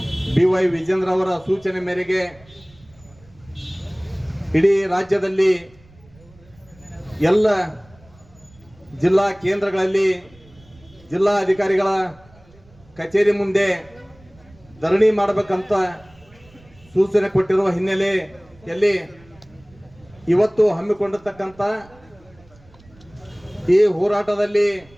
BY ವಿಜೇಂದ್ರ ಅವರ ಸೂಚನೆ ಮೇರೆಗೆ ಇಡೀ ರಾಜ್ಯದಲ್ಲಿ ಎಲ್ಲ ಜಿಲ್ಲಾ ಕೇಂದ್ರಗಳಲ್ಲಿ ಜಿಲ್ಲಾ ಅಧಿಕಾರಿಗಳ ಕಚೇರಿ ಮುಂದೆ ಧರಣಿ ಮಾಡಬೇಕಂತ ಸೂಚನೆ ಕೊಟ್ಟಿರುವ ಹಿನ್ನೆಲೆಯಲ್ಲಿ ಇವತ್ತು ಹಮ್ಮಿಕೊಂಡಿರ್ತಕ್ಕಂಥ ಈ ಹೋರಾಟದಲ್ಲಿ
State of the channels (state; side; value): noise; right; rumble, 27 dB below the sound